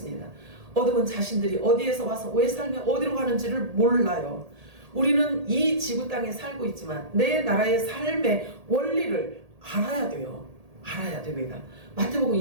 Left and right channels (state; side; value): late; left; 1.8 ms